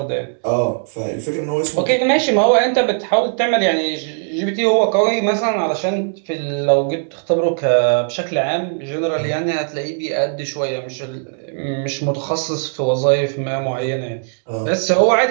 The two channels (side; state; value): left; silent; digital silence